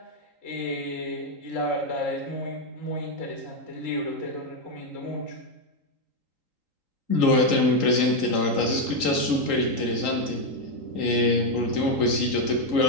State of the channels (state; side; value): late; left; 3.8 ms